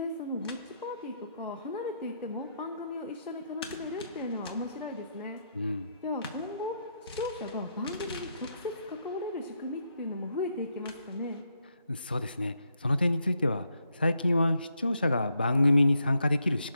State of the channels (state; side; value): inverted; both; correlation -0.79